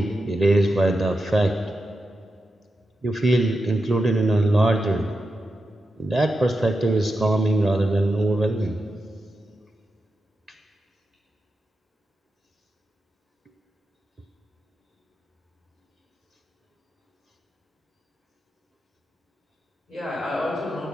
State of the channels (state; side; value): normal; both; correlation 0.89